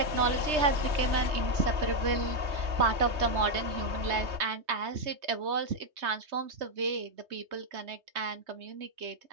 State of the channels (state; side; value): late; left; 3.2 ms